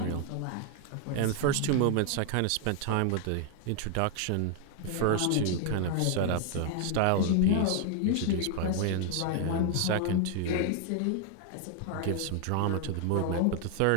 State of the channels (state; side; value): different; both; correlation 0.00